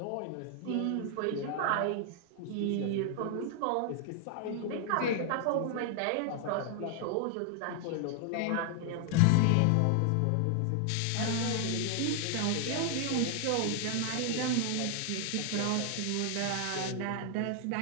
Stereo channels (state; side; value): different; both; correlation 0.00